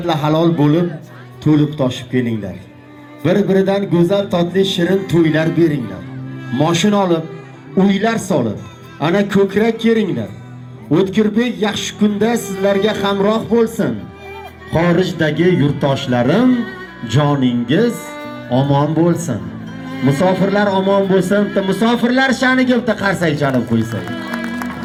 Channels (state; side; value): identical; both; correlation 1.00